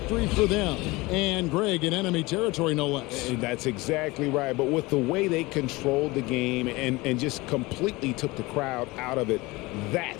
for them. And Greg in enemy territory, no less. That's exactly right. But with the way they controlled the game and just completely took the crowd out of it,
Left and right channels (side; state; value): right; quieter; 22.3 dB